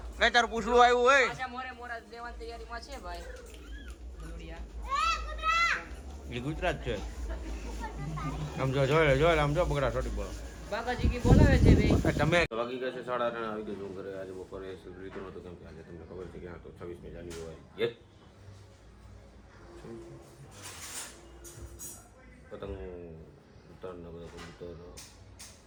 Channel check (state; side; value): identical; both; correlation 1.00